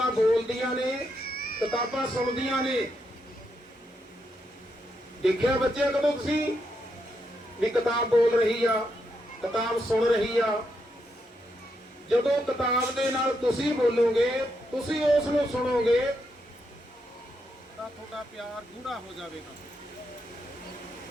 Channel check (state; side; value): normal; both; correlation 0.81